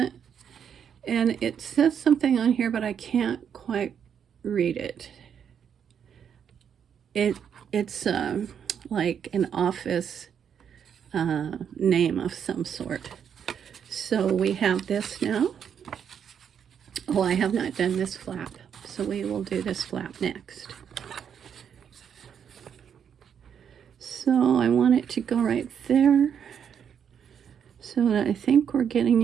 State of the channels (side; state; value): left; quieter; 8.0 dB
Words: And it says something on here, but I can't quite read it. It's like an office name of some sort. So we have this now. Oh, I have not done this flap, so we will do this flap next. So I want it to go right there, so that I think we're getting